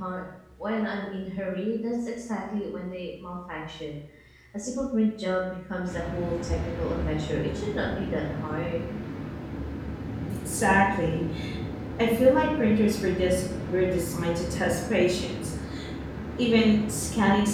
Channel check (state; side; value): identical; both; correlation 1.00